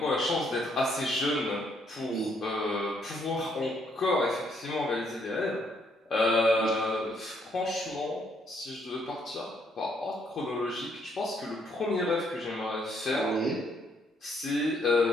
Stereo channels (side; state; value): both; normal; correlation 0.71